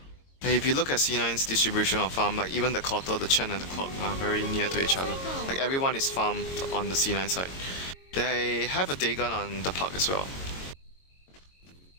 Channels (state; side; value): late; right; 22 ms